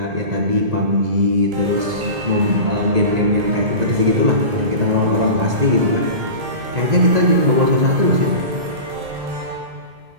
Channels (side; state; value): left; late; 2.0 ms